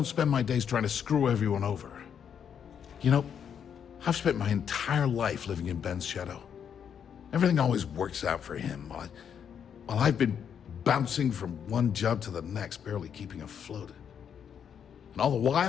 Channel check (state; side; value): quieter; right; 8.0 dB